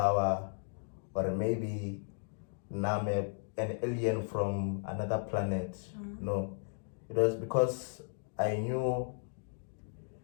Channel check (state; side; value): silent; right; digital silence